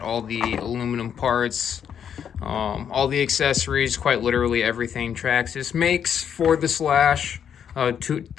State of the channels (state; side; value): quieter; right; 8.3 dB